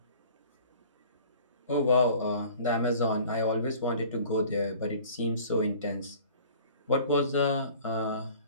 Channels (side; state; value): both; inverted; correlation -0.48